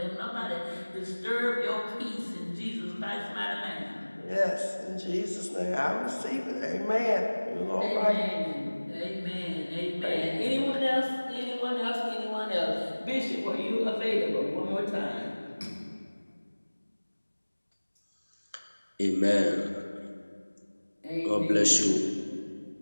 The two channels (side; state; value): both; inverted; correlation -1.00